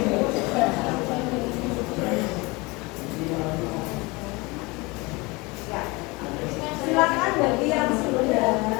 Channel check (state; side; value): quieter; right; 24.9 dB